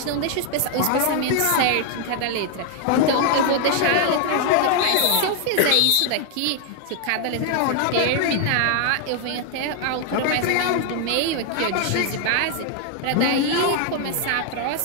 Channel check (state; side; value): different; both; correlation 0.00